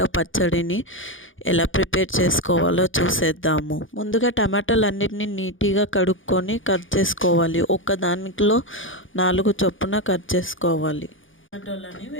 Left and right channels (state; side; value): late; right; 0.57 ms